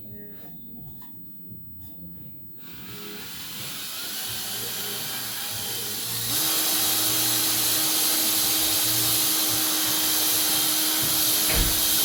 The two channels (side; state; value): both; normal; correlation 0.95